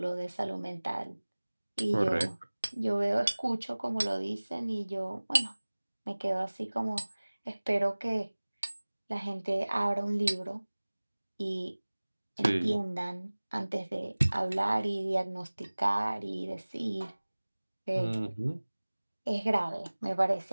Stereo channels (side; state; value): both; inverted; correlation -1.00